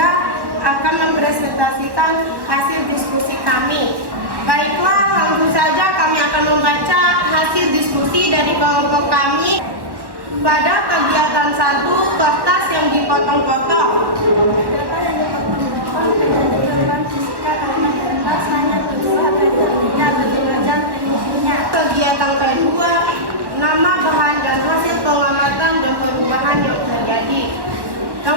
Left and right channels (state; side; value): late; left; 1.1 ms